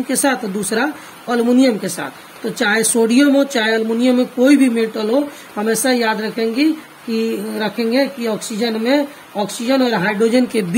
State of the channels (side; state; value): both; identical; correlation 1.00